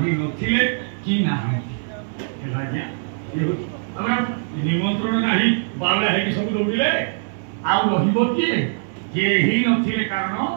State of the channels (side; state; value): left; silent; digital silence